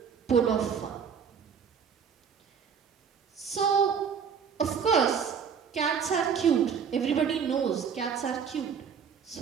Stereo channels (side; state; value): left; quieter; 6.8 dB